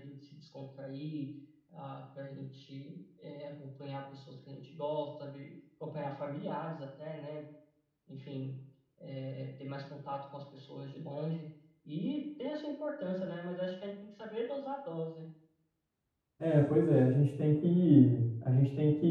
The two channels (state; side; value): identical; both; correlation 1.00